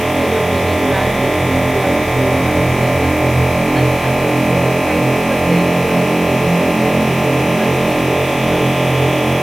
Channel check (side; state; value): left; noise; hiss, 15 dB below the sound